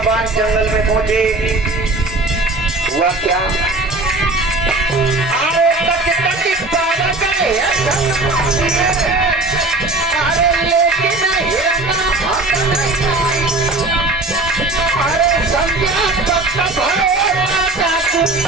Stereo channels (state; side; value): quieter; left; 3.1 dB